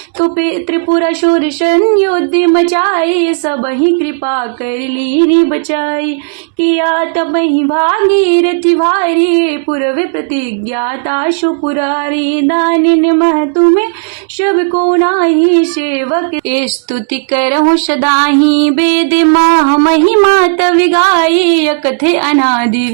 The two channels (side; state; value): left; silent; digital silence